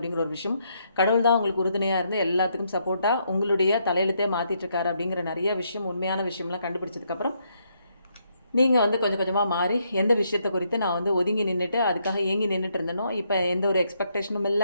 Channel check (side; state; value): both; inverted; correlation -0.75